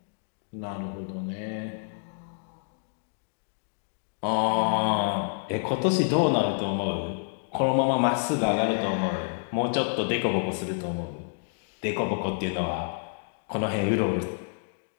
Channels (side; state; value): right; silent; digital silence